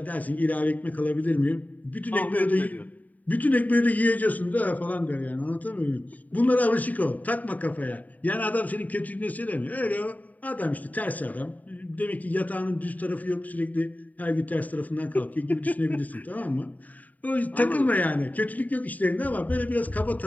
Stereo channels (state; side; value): late; right; 0.075 ms